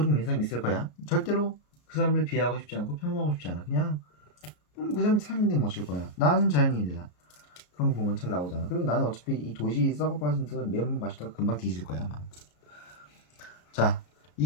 믿는 사람이 있을 거야. 절대로 그 사람을 비하하고 싶지 않고 폄하하고 싶지 않아. 그냥 그 사람이 산인데 뭐 어쩔 거야. 나는 자연인이다. 그런 거 보면 잘 나오잖아. 그리고 나는 어차피 이 도시 썩어 빠진 듯 매운맛 마시다가 금방 뒤질 거야 아마. 자,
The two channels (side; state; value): right; late; 33 ms